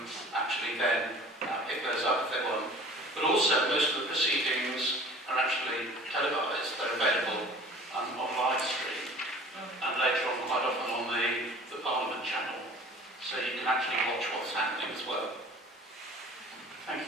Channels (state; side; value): normal; both; correlation 0.45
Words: actually then pick those up if they want. But also, most of the proceedings are actually televised. They're available on live stream, and later on, quite often on the Parliament channel, so you can actually watch what's happening as well. Thank you,